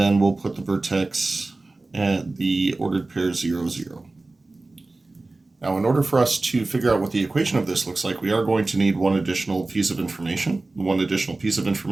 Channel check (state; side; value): quieter; left; 3.2 dB